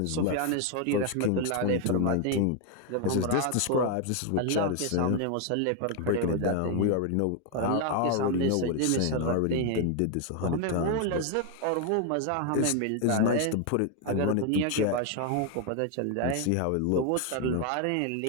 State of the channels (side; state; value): both; different; correlation 0.01